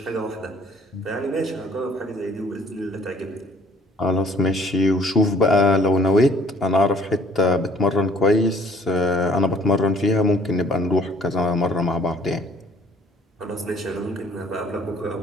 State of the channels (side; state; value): both; normal; correlation 0.58